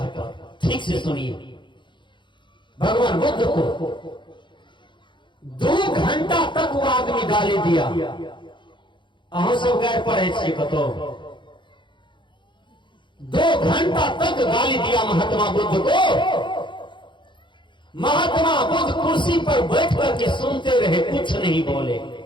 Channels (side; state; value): right; late; 0.23 ms